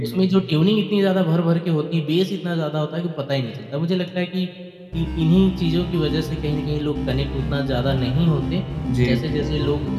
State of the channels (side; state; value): both; identical; correlation 1.00